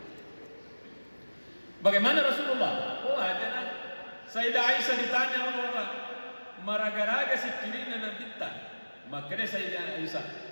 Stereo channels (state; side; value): inverted; both; correlation -1.00